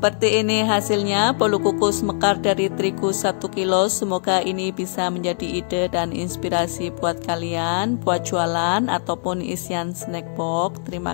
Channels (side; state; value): right; silent; digital silence